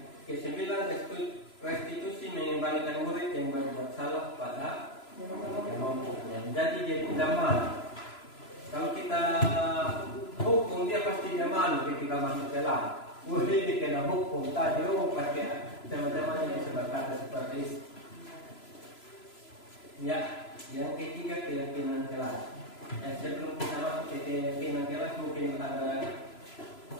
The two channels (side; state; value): right; late; 3.0 ms